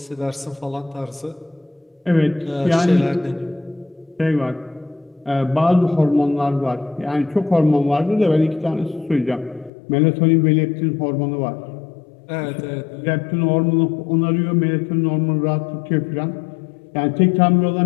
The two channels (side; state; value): right; drops out; at 9.7 s